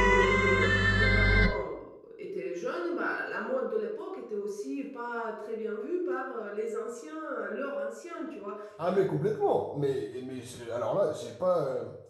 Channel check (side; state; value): both; identical; correlation 1.00